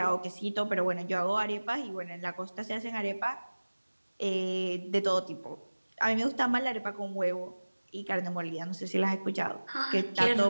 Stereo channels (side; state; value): both; inverted; correlation -1.00